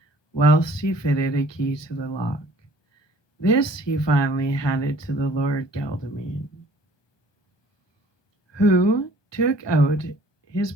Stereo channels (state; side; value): late; right; 1.2 ms